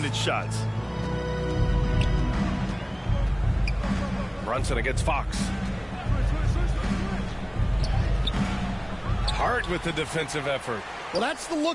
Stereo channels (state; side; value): identical; both; correlation 1.00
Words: shots. Brunson against Fox. Hart with the defensive effort. Well, that's the